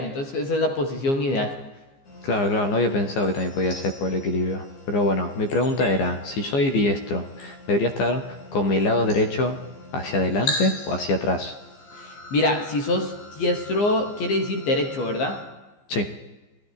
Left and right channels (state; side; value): late; right; 15 ms